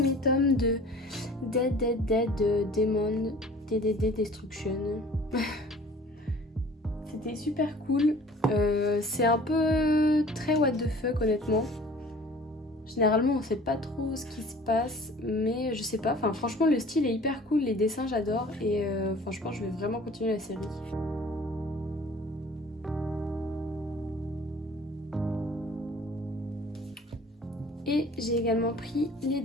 tomes de Dead Demon DDD Destruction. C'était super cool. C'est un peu très what the fuck honnêtement. Généralement on sait pas trop ce qui se passe, mais je sais pas, enfin franchement le style est hyper cool, les dessins j'adore et je pense que je vais vraiment continuer la série. Et j'ai également pris les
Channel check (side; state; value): both; normal; correlation 0.48